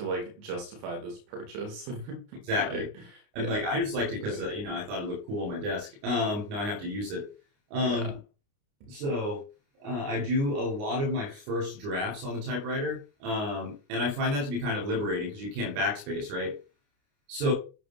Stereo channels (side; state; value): left; late; 29 ms